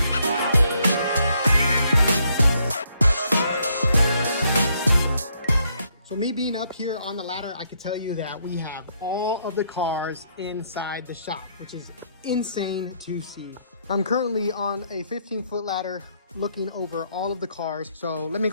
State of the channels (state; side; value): inverted; both; correlation -0.72